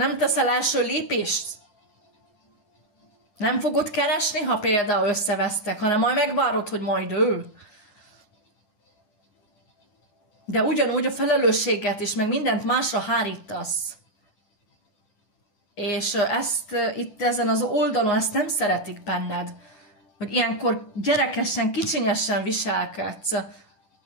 teszel első lépést? Nem fogod keresni, ha például összevesztek, hanem majd megvárod, hogy majd ő. De ugyanúgy a felelősséget is, meg mindent másra hárítasz. És ezt itt ezen az oldalon, ezt nem szeretik benned. Hogy ilyenkor gyerekesen, kicsinyesen viselkedsz.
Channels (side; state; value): right; late; 10 ms